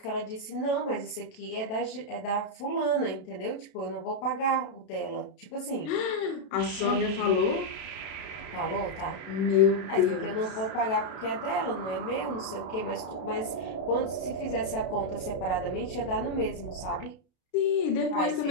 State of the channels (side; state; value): right; late; 32 ms